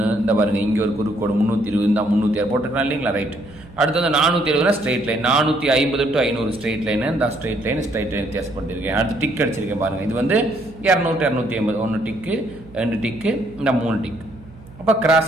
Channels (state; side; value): noise; right; hum, 21 dB below the sound